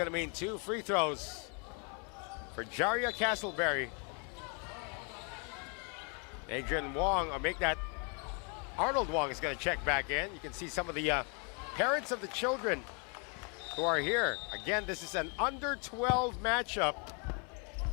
to mean 2 free throws for Jaria Castleberry. Adrian Wong, or make that Arnold Wong is going to check back in. You can see some of the parents of the children who are here. Again, this is an under 12 matchup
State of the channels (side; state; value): right; quieter; 36.7 dB